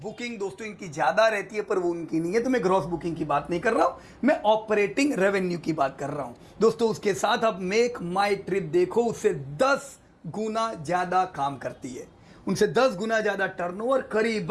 बुकिंग दोस्तों इनकी ज्यादा रहती है, पर वो उनकी नहीं है, तो मैं ग्रॉस बुकिंग की बात नहीं कर रहा हूं, मैं ऑपरेटिंग रेवेन्यू की बात कर रहा हूं दोस्तों। उसके साथ अब मेक माई ट्रिप देखो, उससे 10 गुना ज्यादा काम करती है, उनसे 10 गुना ज्यादा टर्नओवर,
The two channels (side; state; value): both; identical; correlation 1.00